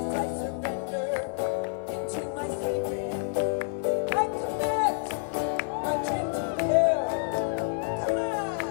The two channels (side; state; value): right; silent; digital silence